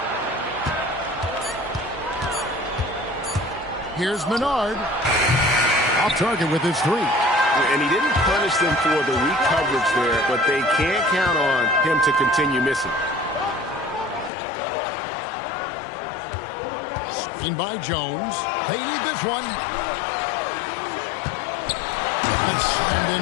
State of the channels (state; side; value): drops out; right; at 14.3 s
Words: Here's Menard. Off target with his 3. And he didn't punish them for the weak coverage there, but they can't count on him to continue missing. Screen by Jones. They need this one. And slammed